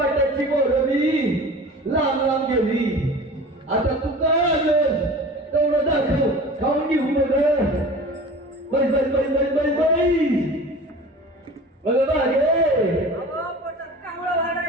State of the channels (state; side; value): normal; both; correlation 0.39